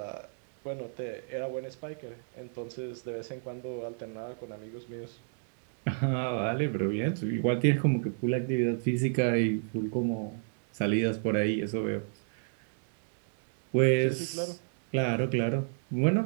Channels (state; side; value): silent; left; digital silence